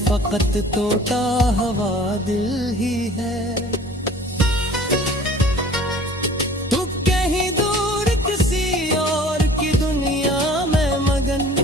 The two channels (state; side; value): normal; both; correlation 0.48